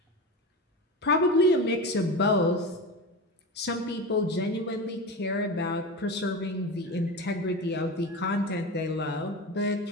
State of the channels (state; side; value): normal; both; correlation 0.25